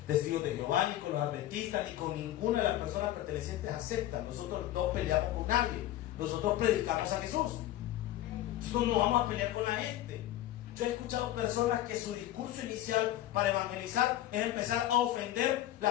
testigos de Jehová, ni con los adventistas, ni con ninguna de las personas pertenecientes a sectas. Nosotros no peleamos con nadie. Nosotros predicamos a Jesús. Nosotros no vamos a pelear con la gente. Yo he escuchado personas que su discurso inicial para evangelizar es empezar a ofender la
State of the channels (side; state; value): right; quieter; 13.9 dB